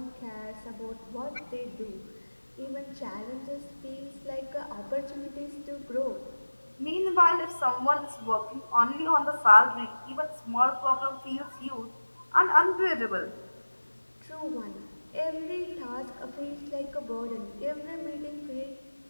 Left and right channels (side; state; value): both; inverted; correlation -1.00